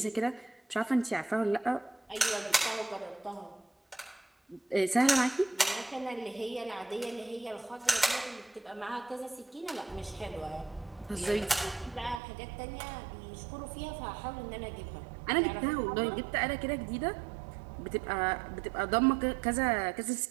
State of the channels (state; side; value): drops out; left; at 12.2 s